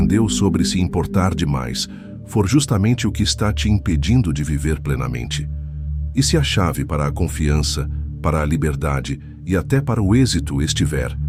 sobre se importar demais for justamente o que está te impedindo de viver plenamente? E se a chave para a confiança, para a liberdade e até para o êxito estiver,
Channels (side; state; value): both; identical; correlation 1.00